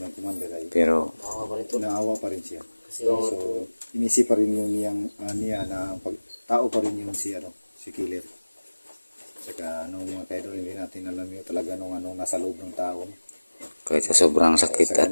ng commander ay Pero Tawa pa rin to. naawa pa rin siya. Kasi So, inisip pa rin yung niya na tao pa rin yung si Killer. Saka mga kaidol, hindi natin alam yung talaga nung nasa loob ng tao. kahit sa sobrang sakit at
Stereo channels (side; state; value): both; inverted; correlation -1.00